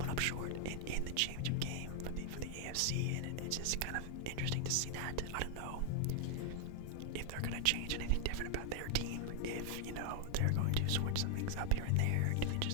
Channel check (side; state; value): both; different; correlation 0.00